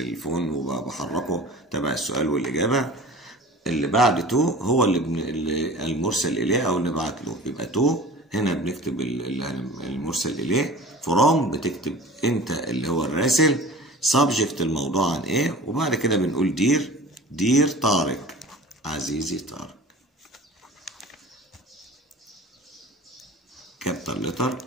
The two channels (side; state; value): both; normal; correlation 0.40